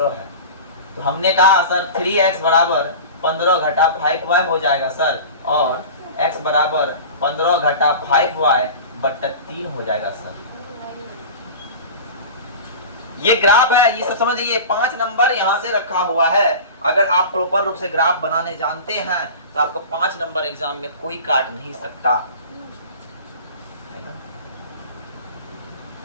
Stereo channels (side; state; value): both; inverted; correlation -0.34